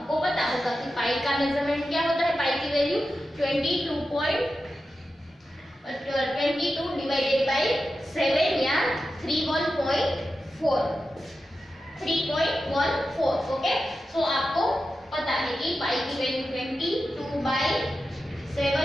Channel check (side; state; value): both; normal; correlation 0.91